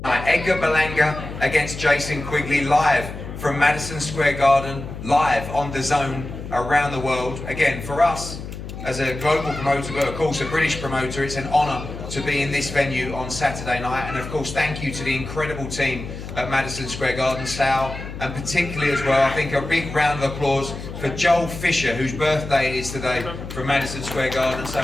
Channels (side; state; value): left; noise; hum, 10 dB below the sound